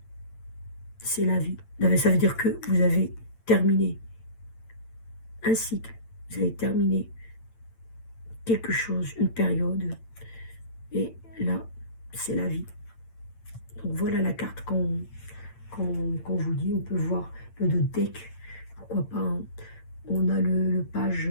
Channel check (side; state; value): right; late; 8.8 ms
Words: c'est la vie. Ça veut dire que vous avez terminé un cycle, vous avez terminé quelque chose, une période, et là, c'est la vie. Donc voilà la carte qu'on vous dit. On peut voir le deck, pourquoi pas, hein. On a le page